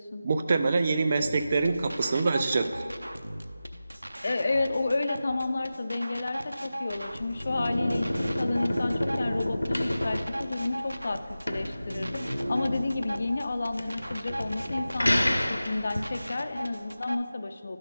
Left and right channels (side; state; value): both; inverted; correlation -0.93